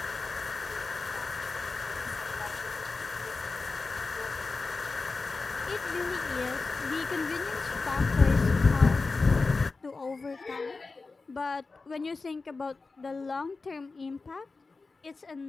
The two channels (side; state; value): right; quieter; 3.9 dB